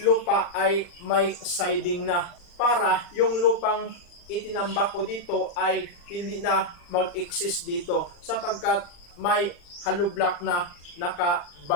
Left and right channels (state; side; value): late; right; 40 ms